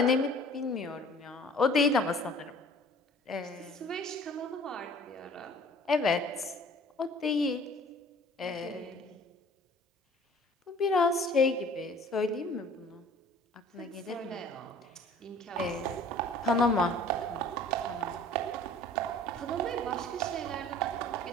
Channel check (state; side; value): normal; both; correlation 0.49